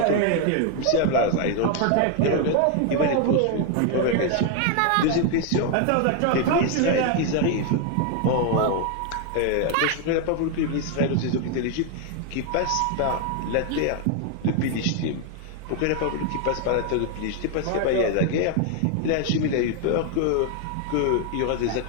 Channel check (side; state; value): both; different; correlation 0.01